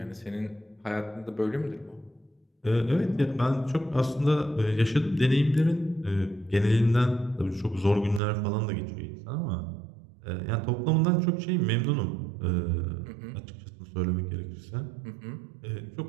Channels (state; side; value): drops out; left; at 8.2 s